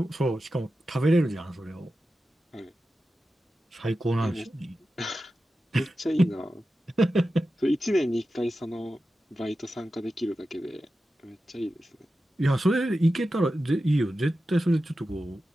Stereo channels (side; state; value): both; normal; correlation 0.92